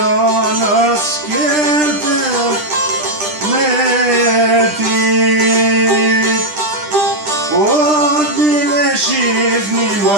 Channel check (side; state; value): left; late; 10 ms